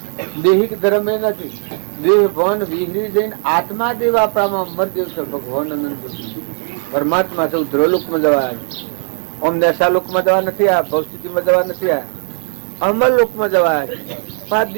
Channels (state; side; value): silent; left; 64 dB below the other